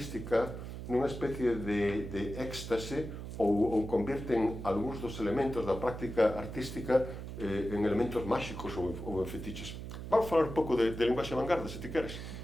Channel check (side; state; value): right; noise; hum, 8 dB below the sound